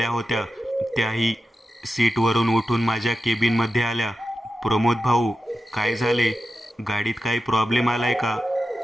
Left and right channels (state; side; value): normal; both; correlation 0.91